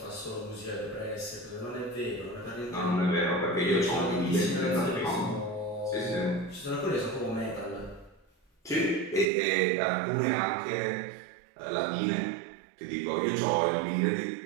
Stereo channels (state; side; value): drops out; left; at 9.2 s